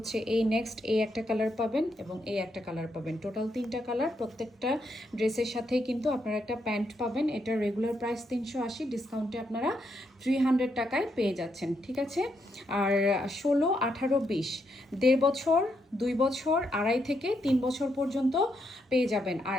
এই নেক্সট এই একটা কালার পাবেন, এবং এই একটা কালার পাবেন। টোটাল 3টা কালার। প্রত্যেকটা ড্রেসের সাথেই কিন্তু আপনারা একটা প্যান্ট পাবেন। এটা রেগুলার প্রাইস 380, ডিসকাউন্টে আপনারা 300 টাকায় পেয়ে যাচ্ছেন। ঠিক আছে, আর 16, 18, 20, 1.5 বছর 2 বছর 2.5 থেকে 3 বছর পর্যন্ত পেয়ে যাবেন।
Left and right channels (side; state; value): both; normal; correlation 0.78